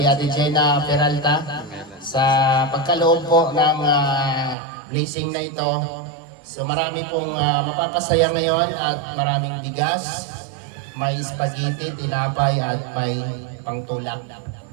Ate Gina Peralta sa pagkaloob po ng blessing na ito. So marami pong mapapasaya ngayon at maraming bigas, may spaghetti, tinapay at may pangtulak.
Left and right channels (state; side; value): drops out; left; at 4.5 s